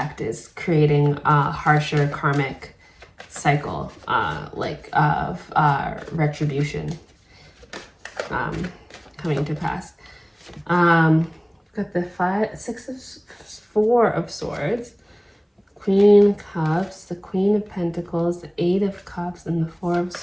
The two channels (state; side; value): identical; both; correlation 1.00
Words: is creating a harsher karmic cycle, of retribution coming to pass. Got the Four of Swords, Queen of Cups, the Queen of Pentacles, the Eight of Cups, and the Four of